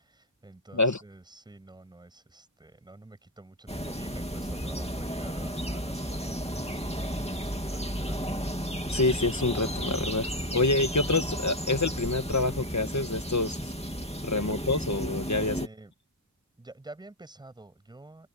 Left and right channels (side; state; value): both; normal; correlation 0.03